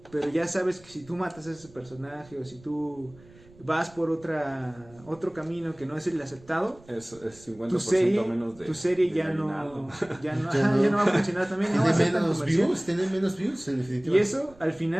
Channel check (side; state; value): right; noise; rumble, 25 dB below the sound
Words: pero ya sabes que si tú matas a ese personaje o si tú vas por otro camino que no es el aceptado, Es 50% tu serie, menos de tu serie de ya no, aguinaldo. ya no, Ya ajá, no. ya no va a funcionar también, no va a ser tan comercial. Tiene menos views, en definitiva. Y eso, al